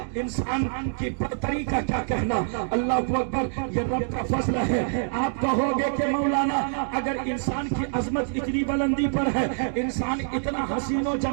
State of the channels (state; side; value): silent; left; digital silence